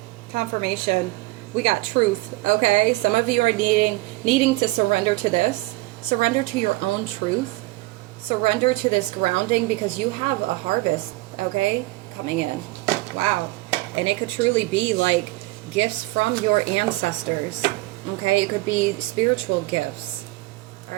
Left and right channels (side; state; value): left; quieter; 20.8 dB